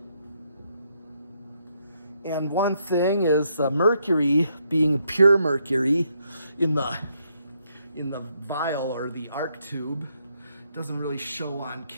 And one thing is mercury, being pure mercury in the vial or the arc tube, doesn't really show on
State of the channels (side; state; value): both; inverted; correlation -0.76